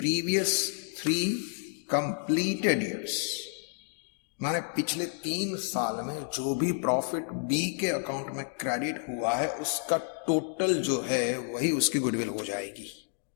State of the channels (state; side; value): silent; right; digital silence